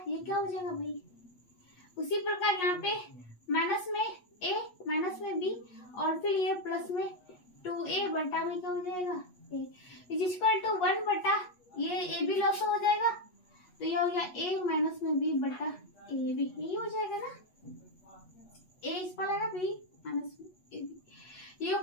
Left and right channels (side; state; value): right; late; 8.3 ms